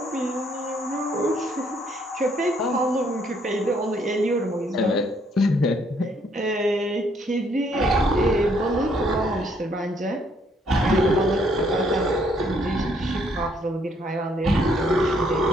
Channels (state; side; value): normal; both; correlation 0.68